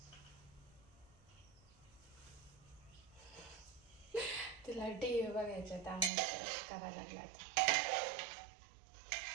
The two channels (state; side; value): drops out; left; at 6.1 s